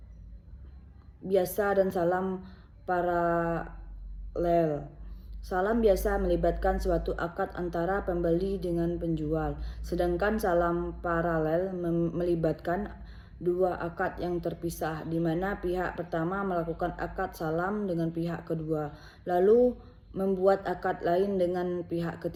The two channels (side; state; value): both; identical; correlation 1.00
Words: biasa dan salam paralel. Salam biasa melibatkan suatu akad antara pembeli dengan penjual, sedangkan salam paralel melibatkan dua akad yang terpisah, di mana pihak pertama melakukan akad salam dengan pihak kedua, lalu membuat akad lain dengan pihak